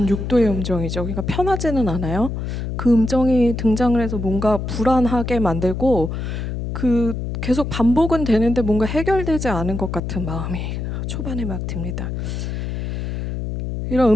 6도의 음정이죠. 그러니까 편하지는 않아요. 그 음정이 등장을 해서 뭔가 불안하게 만들고 그 계속 반복은 되는데 뭔가 해결되지 않은 것 같은 마음이 초반에 막 듭니다. 이런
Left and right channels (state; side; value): noise; left; hum, 4 dB below the sound